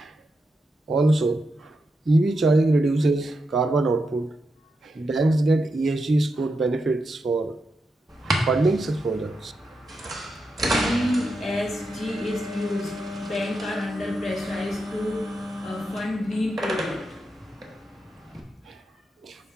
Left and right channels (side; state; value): both; normal; correlation 0.86